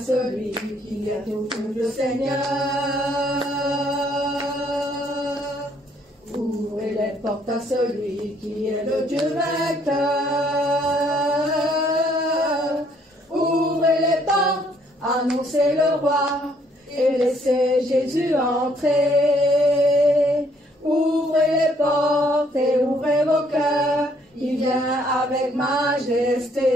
qui est au fond le Seigneur. Ouvrez les portes à celui qui est le Dieu vainqueur. Ouvrez les portes, annoncez le roi et laissez Jésus entrer. Ouvrez les portes et ouvrez vos cœurs, il vient avec majesté.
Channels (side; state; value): both; normal; correlation 0.66